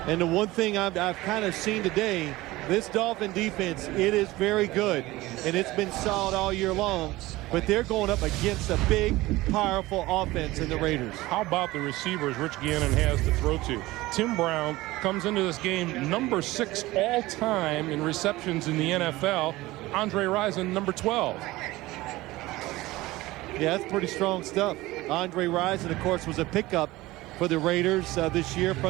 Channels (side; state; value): left; quieter; 18.9 dB